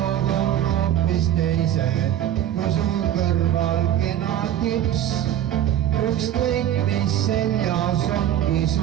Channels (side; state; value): left; quieter; 11.4 dB